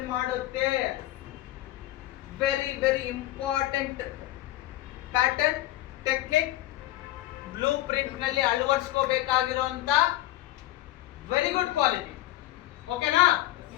ಮಾಡುತ್ತೆ. Very very important pattern technique blueprint ನಲ್ಲಿ ಅಳವಡಿಸ್ಕೋಬೇಕಾಗಿರುವಂತ ವೆರಿ ಗುಡ್ ಕ್ವಾಲಿಟಿ. ಓಕೆನಾ?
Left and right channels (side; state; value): right; quieter; 15.4 dB